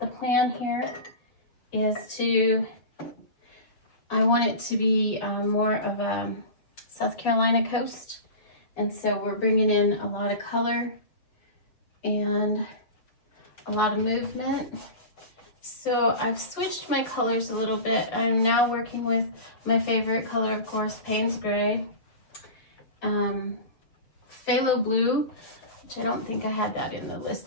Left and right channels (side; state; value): right; late; 6.9 ms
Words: the plan here, is I want it to be more of a South Carolina coast, and so we're bringing in a lot of color and a lot of movement. So I've switched my colors a little bit. I'm now working with my favorite color, of course, Payne's Gray, Phthalo Blue, which I don't think I had that in the